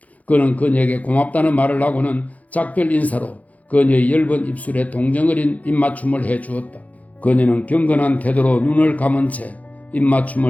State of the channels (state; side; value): late; right; 0.072 ms